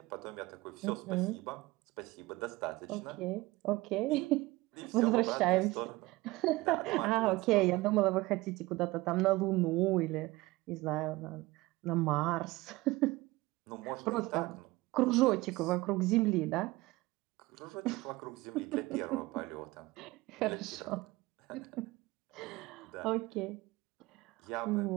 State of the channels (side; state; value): left; quieter; 20.4 dB